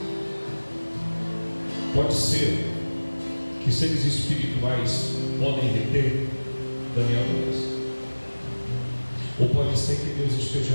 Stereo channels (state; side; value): inverted; both; correlation -1.00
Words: Pode ser que seres espirituais podem reter Daniel 2. Ou pode ser que Deus esteja